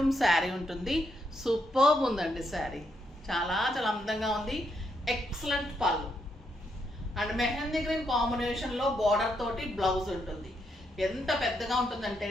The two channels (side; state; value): both; normal; correlation 0.78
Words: శారీ ఉంటుంది. సూపర్బ్ ఉందండి శారీ, చాలా చాలా అందంగా ఉంది. Excellent pallu and mehndi green combination లో బార్డర్ తోటి బ్లౌజ్ ఉంటుంది. ఎంత పెద్దగా ఉంటుందంటే